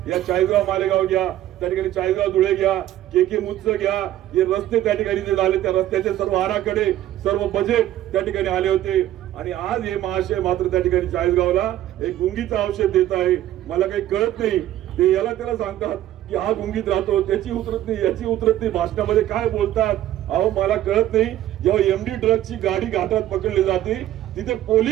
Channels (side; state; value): left; quieter; 13.2 dB